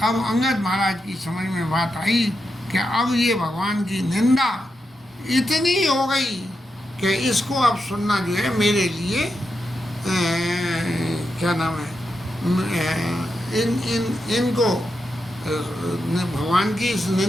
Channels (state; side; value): normal; both; correlation 0.86